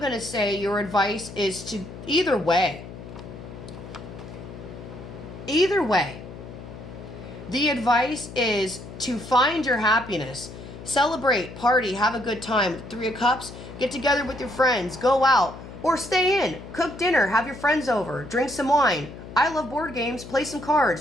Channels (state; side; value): noise; left; hum, 13 dB below the sound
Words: to say your advice is to either way. Either way. The advice is to find your happiness. Celebrate, party, have a good time. Three of Cups, get together with your friends, go out, or stay in, cook dinner, have your friends over, drink some wine. I love board games, play some